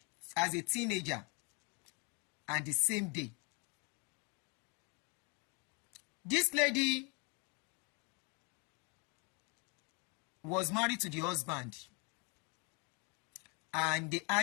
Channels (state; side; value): quieter; right; 32.7 dB